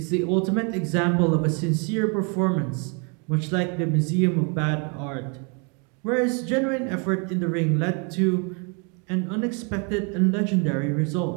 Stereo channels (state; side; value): quieter; left; 35.5 dB